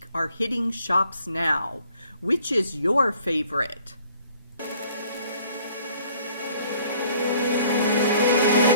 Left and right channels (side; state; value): both; inverted; correlation -0.59